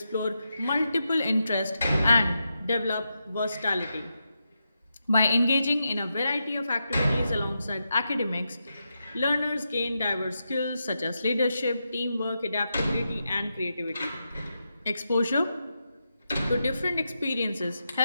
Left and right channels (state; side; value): inverted; both; correlation -0.87